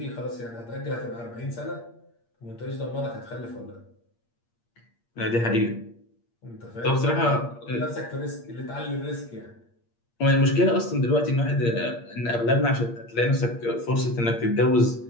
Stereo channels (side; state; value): right; late; 8.6 ms